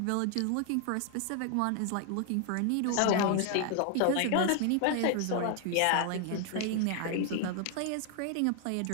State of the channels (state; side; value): different; both; correlation 0.00